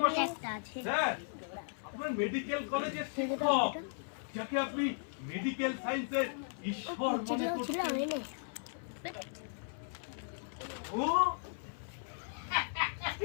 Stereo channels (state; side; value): silent; right; 54 dB below the other